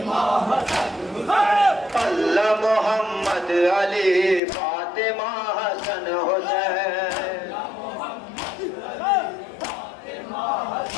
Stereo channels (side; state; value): right; drops out; at 4.4 s